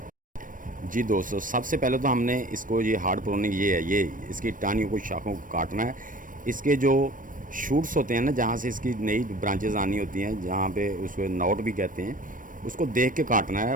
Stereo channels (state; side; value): late; left; 0.39 ms